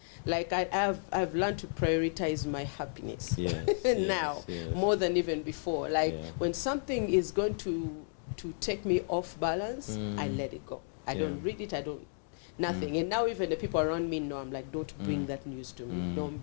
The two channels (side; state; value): right; silent; digital silence